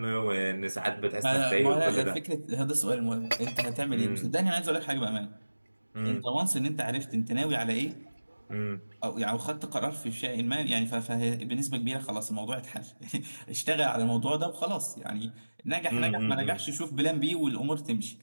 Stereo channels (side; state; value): both; inverted; correlation -1.00